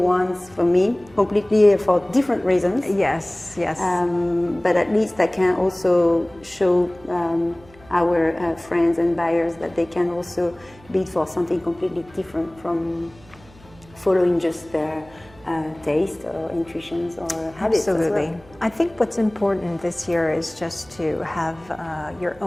for me, completely for different reasons. Yes. But at least I can also show our friends and buyers that they can also bid for something completely different from following just their taste or intuitions or habits. Absolutely. As well. I think what's important this year is just to have your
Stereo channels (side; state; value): right; noise; hum, 25 dB below the sound